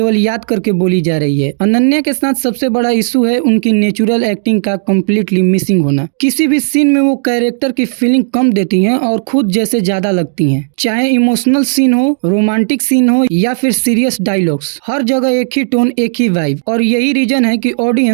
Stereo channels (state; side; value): silent; left; digital silence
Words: याद करके बोली जा रही है। अनन्या के साथ सबसे बड़ा इशू है उनकी नेचुरल एक्टिंग का कम्प्लीटली मिसिंग होना। किसी भी सीन में वो कैरेक्टर की फीलिंग कम देती है और खुद जैसे ज्यादा लगती हैं। चाहे इमोशनल सीन हो, रोमांटिक सीन हो या फिर सीरियस डायलॉग्स, हर जगह एक ही टोन, एक ही वाइब। और यही रीजन है कि